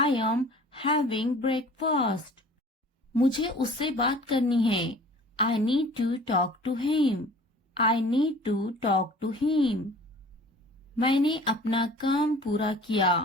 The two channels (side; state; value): both; normal; correlation 0.47